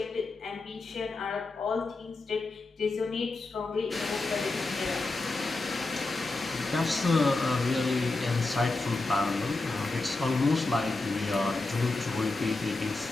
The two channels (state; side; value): quieter; right; 3.3 dB